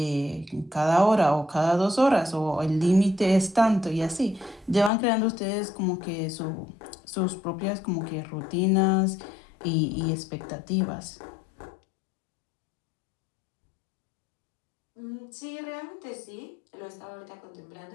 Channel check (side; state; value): right; drops out; at 4.9 s